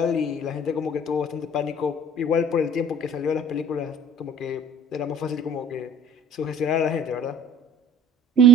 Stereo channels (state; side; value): normal; both; correlation 0.49